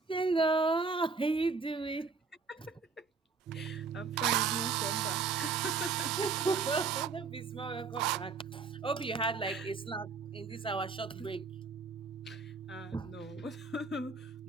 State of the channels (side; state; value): left; quieter; 4.8 dB